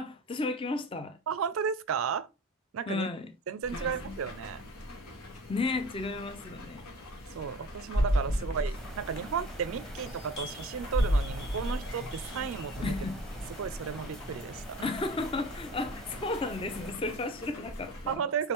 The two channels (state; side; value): normal; both; correlation 0.39